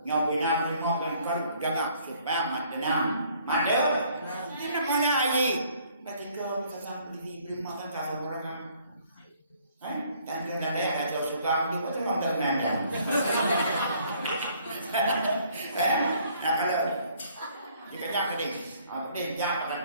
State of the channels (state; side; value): inverted; both; correlation -0.62